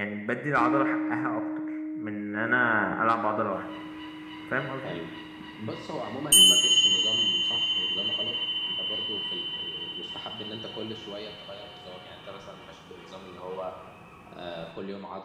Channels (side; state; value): both; identical; correlation 1.00